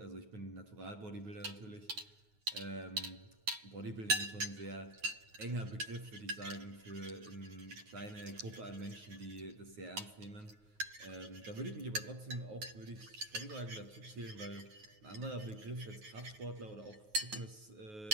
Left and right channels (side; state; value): left; late; 9.4 ms